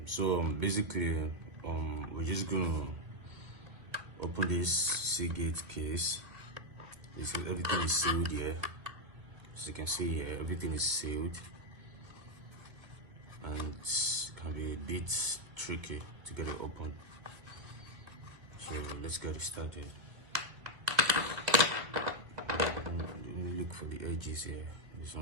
So basically we're just gonna open this Seagate case. Everything is sealed here. As you can see here, everything is sealed, and it can be a bit tricky to get it open. So let's get it started. Look for the edges here. There's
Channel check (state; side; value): late; left; 2.1 ms